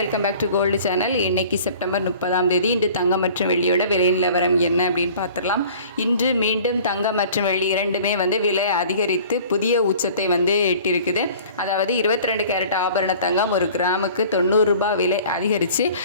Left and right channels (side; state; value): both; inverted; correlation -0.47